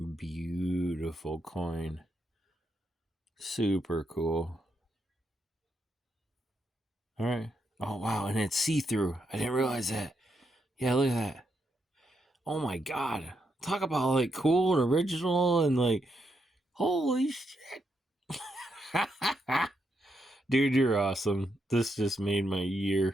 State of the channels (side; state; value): both; normal; correlation 0.81